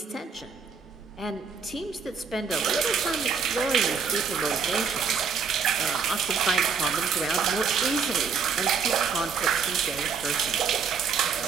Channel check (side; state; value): left; quieter; 5.8 dB